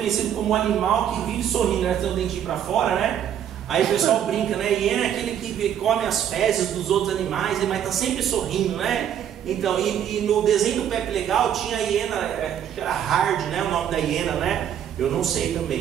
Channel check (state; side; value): quieter; left; 9.7 dB